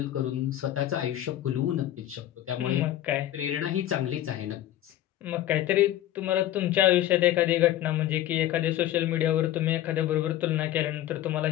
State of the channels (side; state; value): right; quieter; 13.1 dB